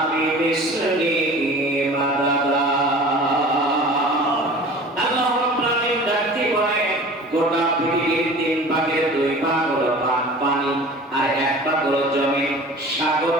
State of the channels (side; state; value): both; normal; correlation 0.41